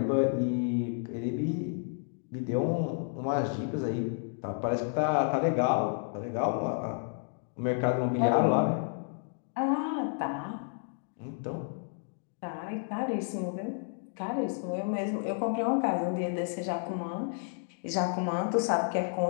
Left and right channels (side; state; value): right; silent; 57 dB below the other